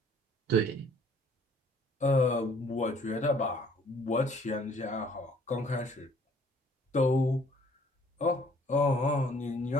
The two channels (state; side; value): normal; both; correlation 0.58